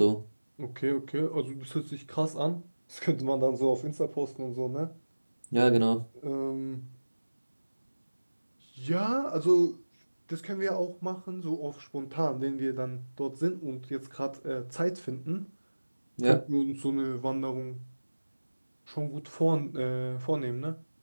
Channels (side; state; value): both; inverted; correlation -1.00